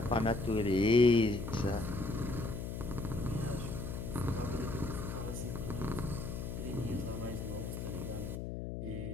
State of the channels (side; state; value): left; noise; hum, 5 dB below the sound